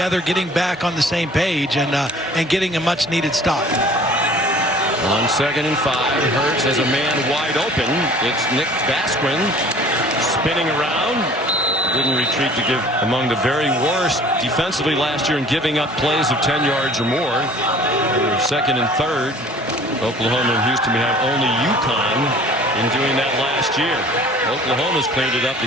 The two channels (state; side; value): normal; both; correlation 0.49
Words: getting back on the same page, and getting a much-needed stop. On 2nd and 5, Hurts has a man wide open. It's Nick Basquin spinning around. Didn't retreat to give among the very worst defensively last year in giving up plays of 10 yards or more. 2nd and 3rd. Oklahoma and Houston have only UConn in doing that last year. Oklahoma's cleaned it up. The